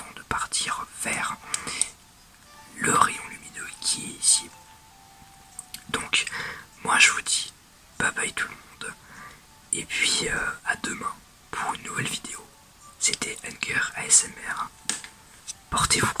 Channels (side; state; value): both; identical; correlation 1.00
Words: de partir vers le rayon lumineux qui est ici. Donc, moi je vous dis bye bye tout le monde, et puis à demain pour une nouvelle vidéo. C'était Hunger ASMR. Portez-vous